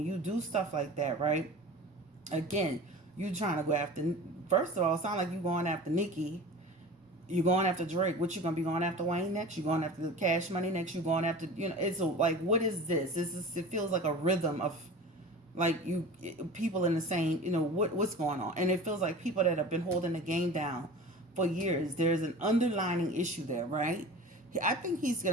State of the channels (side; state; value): both; normal; correlation 0.37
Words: you do stuff like that, right? Again, you trying to go after, first of all, it sounds like you going after Nicki. You going after Drake. What you gonna be going after Wayne next? You going after the Cash Money next? You going after, it's like, what is this? It feels like a rhythm of like people in the same, what's going on, and it feels like people that have been holding the game down for years. There's an underlining issue there, right? I think he's